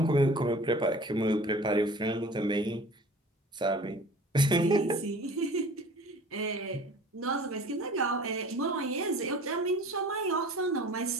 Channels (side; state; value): both; normal; correlation 0.44